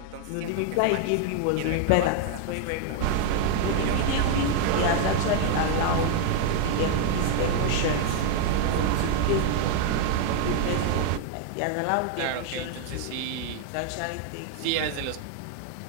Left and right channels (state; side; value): different; both; correlation 0.00